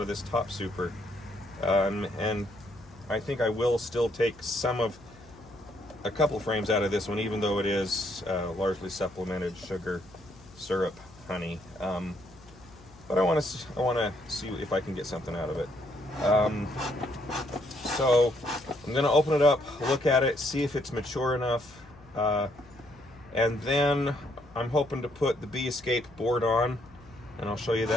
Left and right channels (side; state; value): left; noise; hum, 24 dB below the sound